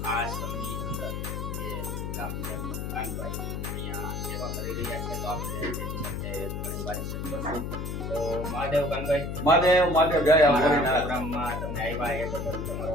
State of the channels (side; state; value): left; noise; hum, 4 dB below the sound